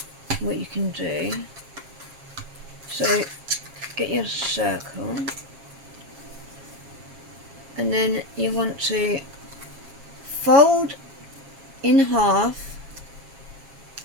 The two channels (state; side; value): late; left; 7.3 ms